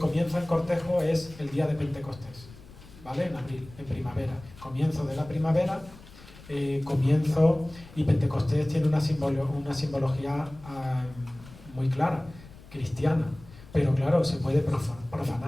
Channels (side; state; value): left; noise; rumble, 20 dB below the sound